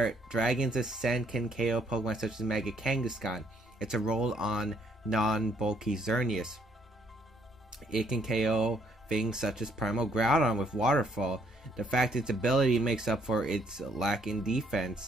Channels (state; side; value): normal; both; correlation 0.68